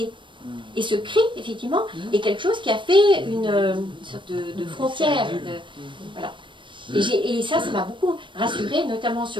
Et ce cri, effectivement, est quelque chose qui a fait une sorte de frontière. Voilà. Et ça m'a beaucoup rassurée, notamment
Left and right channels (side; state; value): left; late; 0.24 ms